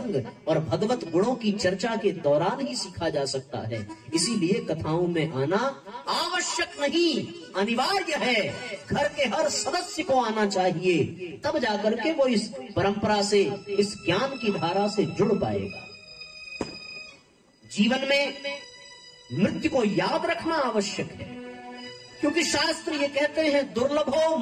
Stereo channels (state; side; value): identical; both; correlation 1.00